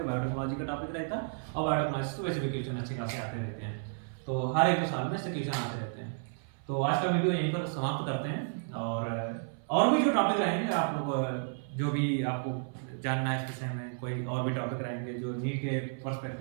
बायोटेक्नोलॉजी का टॉपिक रहता है, और बायोटेक्नोलॉजी तो वैसे भी क्वेश्चन अच्छे खासे आते रहते हैं, तो हर 1-2 साल में ऐसे क्वेश्चन आते रहते हैं। तो आज का वीडियो यहीं पर समाप्त करते हैं, और भी जो टॉपिक रहेंगे आप लोग, जो भी आपको जानना है इस विषय में, कोई और भी टॉपिक रहेंगे जो नीट के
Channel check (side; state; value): left; silent; 56 dB below the other